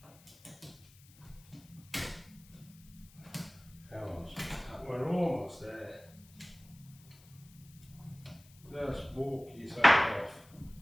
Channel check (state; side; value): noise; left; hiss, 25 dB below the sound